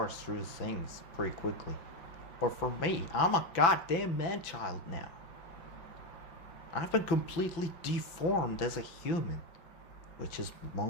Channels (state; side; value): late; right; 5.9 ms